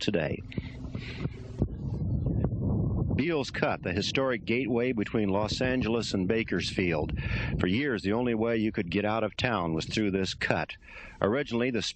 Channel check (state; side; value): identical; both; correlation 1.00